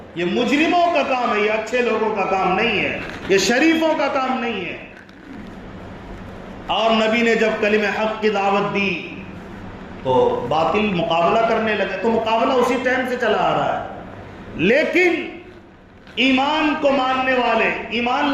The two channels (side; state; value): both; identical; correlation 1.00